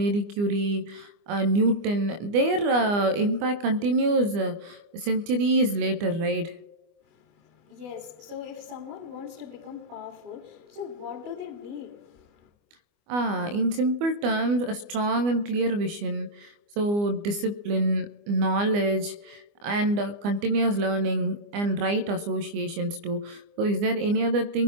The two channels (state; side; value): late; left; 24 ms